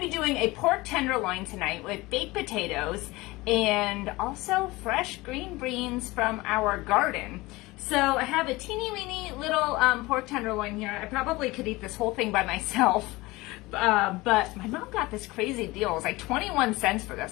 be doing a pork tenderloin tonight with baked potatoes and also fresh green beans from our garden. So I have a teeny weeny little pork tenderloin here. I probably could eat this whole thing by myself. But my mom got this crazy deal. It was like 21 cents for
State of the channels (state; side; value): quieter; right; 21.1 dB